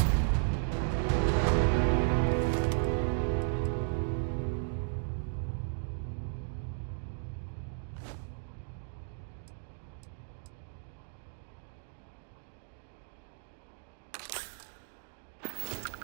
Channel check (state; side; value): silent; left; digital silence